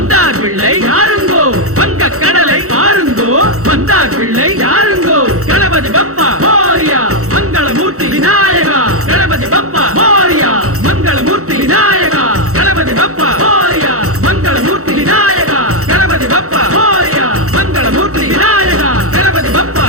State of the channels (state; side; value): late; left; 0.64 ms